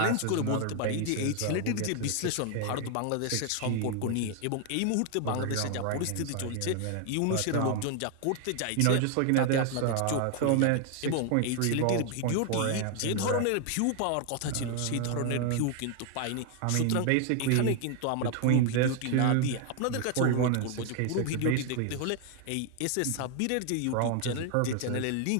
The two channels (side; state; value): both; different; correlation 0.00